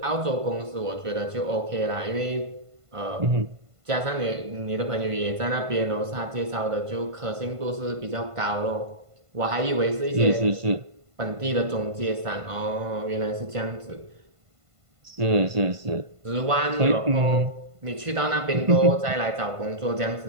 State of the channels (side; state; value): left; late; 1.5 ms